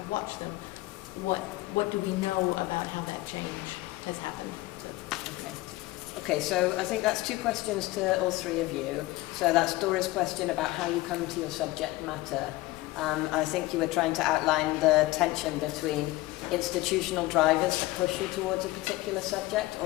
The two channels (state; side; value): quieter; right; 18.9 dB